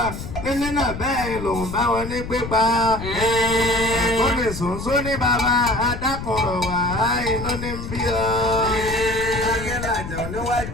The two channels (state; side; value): noise; left; rumble, 8 dB below the sound